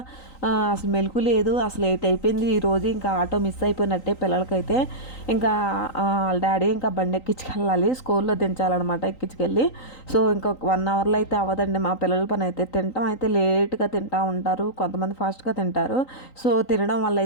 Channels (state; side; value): late; right; 3.9 ms